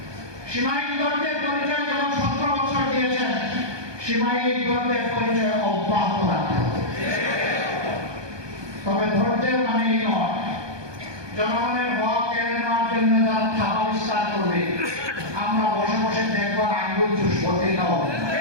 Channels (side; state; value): left; late; 1.2 ms